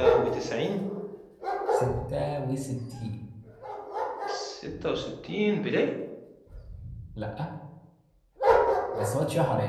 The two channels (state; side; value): identical; both; correlation 1.00